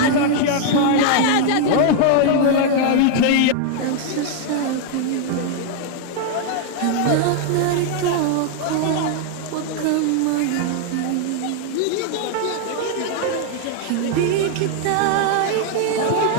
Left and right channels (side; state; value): both; different; correlation 0.00